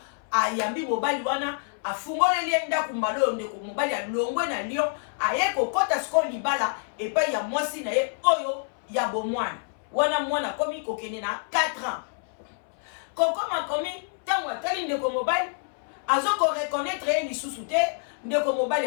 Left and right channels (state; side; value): silent; right; 60 dB below the other